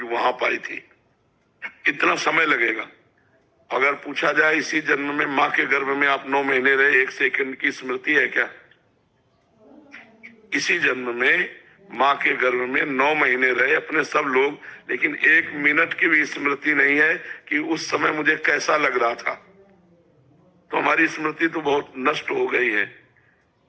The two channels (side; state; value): both; identical; correlation 1.00